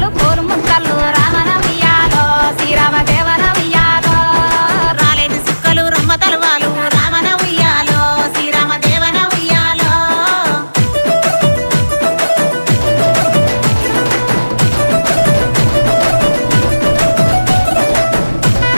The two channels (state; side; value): inverted; both; correlation -1.00